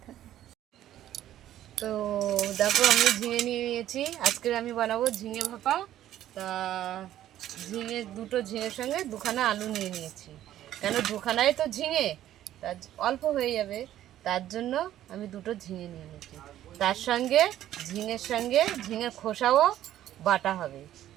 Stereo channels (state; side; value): quieter; left; 12.5 dB